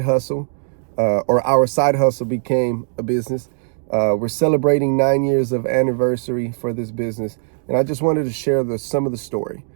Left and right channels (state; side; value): silent; left; digital silence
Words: hustle, or our side hustle, became a business. We're celebrating 9 years of anniversary for this business, and I just wanted to share some of the story